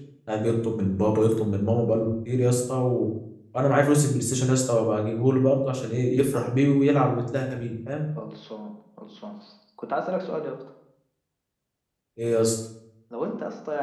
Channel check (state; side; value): identical; both; correlation 1.00